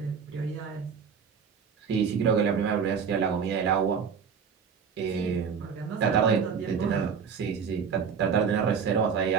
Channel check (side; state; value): left; quieter; 6.5 dB